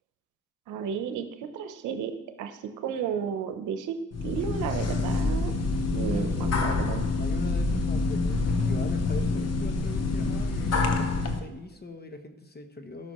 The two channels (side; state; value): both; normal; correlation 0.56